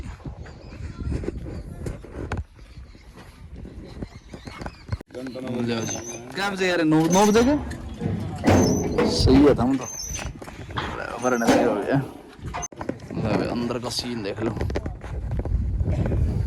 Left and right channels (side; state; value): both; identical; correlation 1.00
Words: क्या बजे यार? 9 बजे के सही है। हम तो भरने लगे हो गया। अंदर का सीन देख लो।